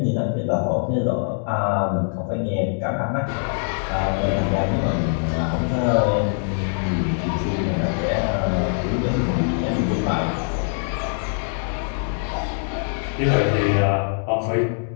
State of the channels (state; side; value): silent; right; digital silence